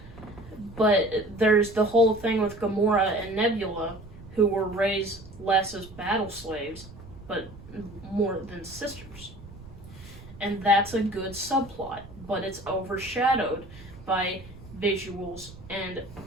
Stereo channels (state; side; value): noise; right; rumble, 18 dB below the sound